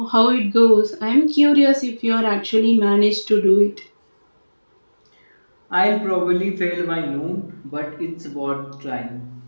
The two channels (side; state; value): both; inverted; correlation -1.00